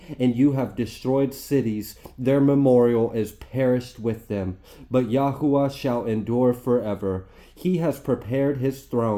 and you have destroyed cities. Their memorial is perished with them. But Yahuwah shall endure forever. He has prepared his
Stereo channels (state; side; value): identical; both; correlation 1.00